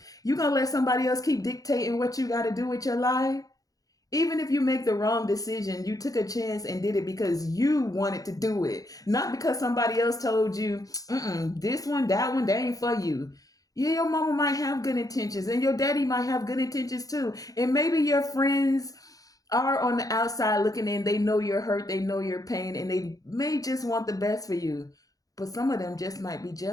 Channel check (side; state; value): right; late; 0.17 ms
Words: You gonna let somebody else keep dictating what you gotta do with your life? Even if you make the wrong decision, you took a chance and did it because you wanted to do it. Not because somebody else told you, this one, that ain't for you. Yeah, your mama might have good intentions and your daddy might have good intentions too. And maybe your friends are on the outside looking in. They know you're hurt, they know your pain, and they may just want the best for you. But some of them just might be